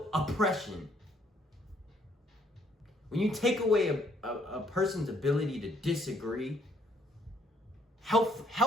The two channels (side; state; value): both; normal; correlation 0.67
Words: oppression. When you take away a person's ability to disagree,